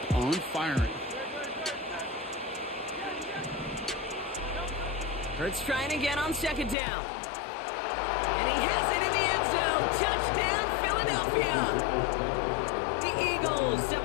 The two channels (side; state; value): right; drops out; at 6.8 s